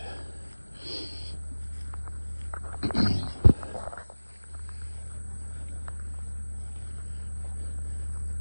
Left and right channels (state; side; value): inverted; both; correlation -1.00